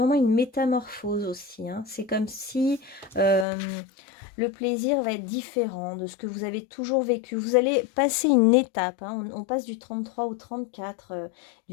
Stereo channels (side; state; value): right; drops out; at 3.5 s